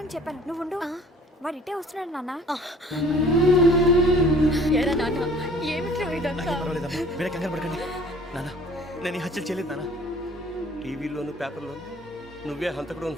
చెప్పాను. నువ్వు ఉండు, వాడు ఇట్టే వస్తున్నాడు నాన్న. ఏరా నాన్న, ఏమిట్రా ఇదంతా? మీరే కంగారు పడకండి నాన్న. నేను ఈ హత్యలు చేయలేదు నాన్న. టీవీలోను పేపర్లోను నువ్వే హంతకుడు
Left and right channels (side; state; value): both; normal; correlation 0.51